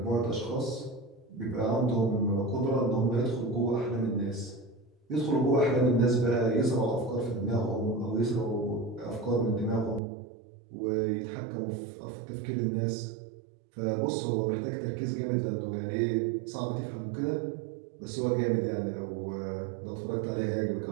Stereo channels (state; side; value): drops out; left; at 10.0 s